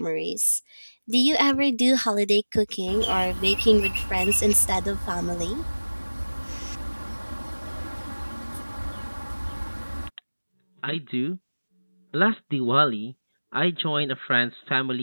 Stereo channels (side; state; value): both; inverted; correlation -1.00